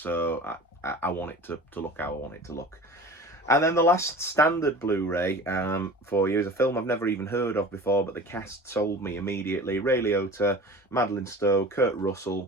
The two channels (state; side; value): normal; both; correlation 0.39